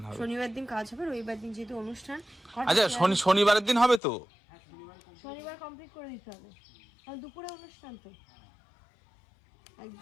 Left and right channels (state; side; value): drops out; right; at 4.0 s